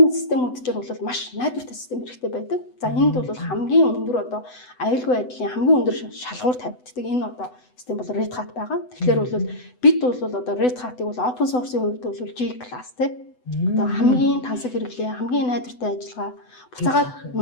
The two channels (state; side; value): late; right; 8.0 ms